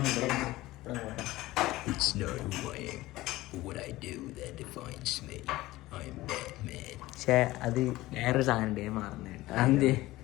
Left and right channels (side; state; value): right; quieter; 17.9 dB